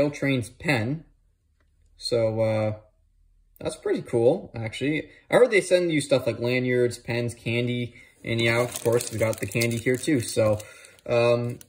Trains pen. So that's pretty cool, actually. I heard they send you stuff like lanyards, pens, candy. And yeah, of course, we got the candy here too. So,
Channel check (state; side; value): identical; both; correlation 1.00